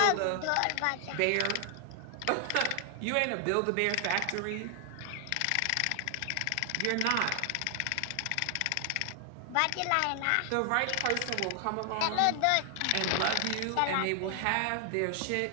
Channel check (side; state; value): both; different; correlation 0.00